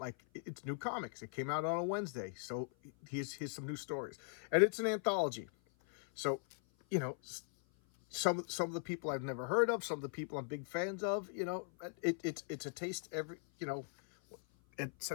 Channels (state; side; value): silent; right; 51 dB below the other